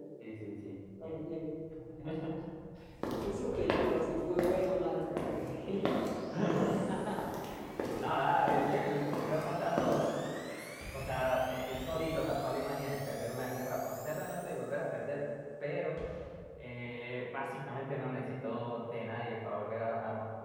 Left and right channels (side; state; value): both; identical; correlation 1.00